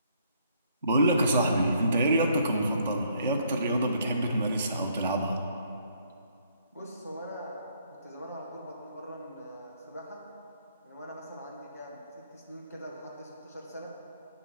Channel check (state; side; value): inverted; both; correlation -0.67